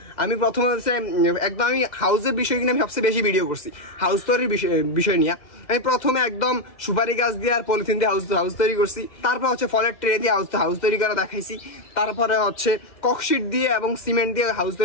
আমি প্রথমে হচ্ছে একদম আমি হাউসের বিষয় কিনে আমি সবচেয়ে বেশি ভিডিও করছি, হাউস তৈরির বিষয় নিয়ে। আমি প্রথমে একদম সুপারি গাছ দিয়ে আর পলিথিন দিয়ে হাউস তৈরি করছি, তারপর হচ্ছে ফলের ট্রে দিয়ে হাউস তৈরি করে দেখাইছি, তারপরে হচ্ছে ককশিট দিয়ে এবং সিমেন্ট দিয়ে হাউস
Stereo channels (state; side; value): late; right; 2.1 ms